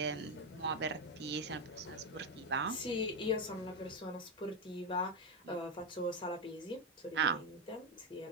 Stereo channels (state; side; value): normal; both; correlation 0.09